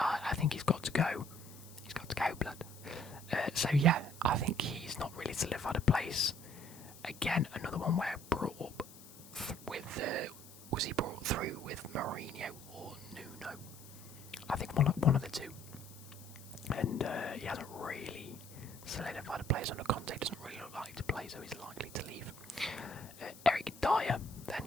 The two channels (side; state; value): left; noise; hiss, 19 dB below the sound